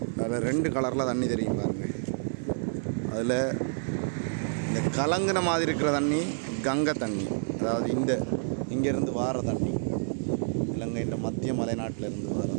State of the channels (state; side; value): silent; left; digital silence